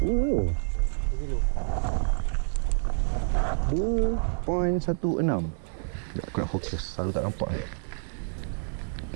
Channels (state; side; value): silent; left; 59 dB below the other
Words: tu. 2.16. Aku nak fokus, selalu tak nampak.